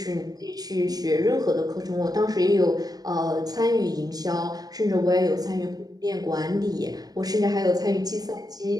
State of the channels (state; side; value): late; left; 0.18 ms